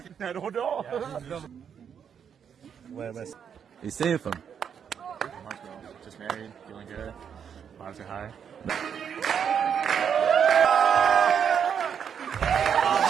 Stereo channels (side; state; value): left; quieter; 7.7 dB